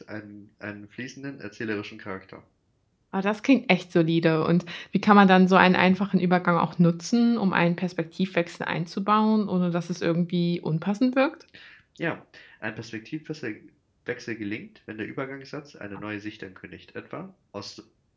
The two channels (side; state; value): both; identical; correlation 1.00